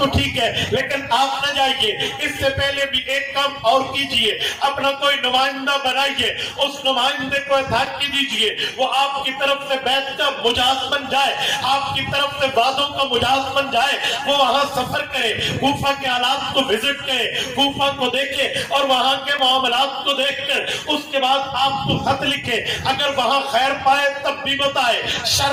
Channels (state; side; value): identical; both; correlation 1.00